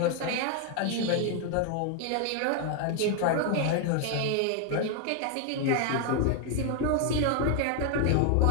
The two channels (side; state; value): both; different; correlation 0.00